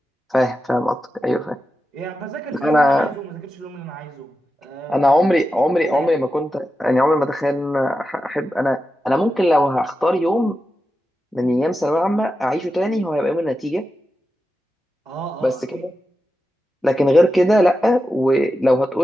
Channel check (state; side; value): normal; both; correlation 0.90